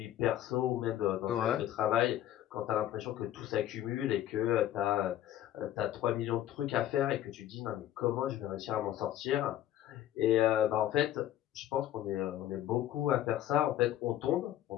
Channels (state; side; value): quieter; right; 12.5 dB